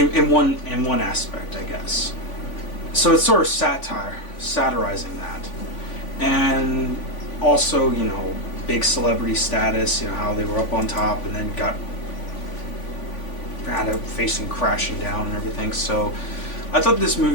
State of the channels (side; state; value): right; late; 3.5 ms